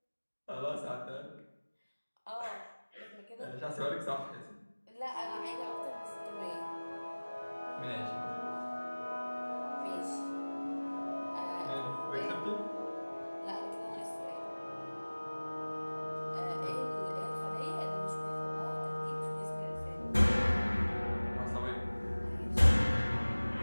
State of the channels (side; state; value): both; inverted; correlation -1.00